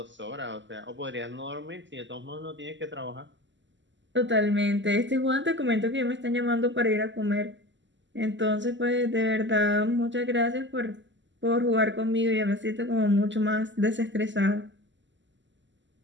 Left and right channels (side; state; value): left; late; 0.54 ms